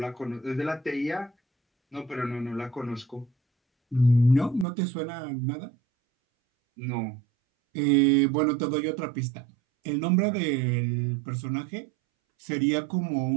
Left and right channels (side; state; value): left; drops out; at 4.7 s